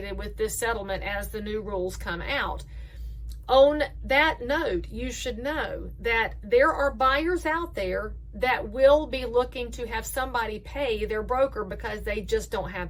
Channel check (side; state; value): both; identical; correlation 1.00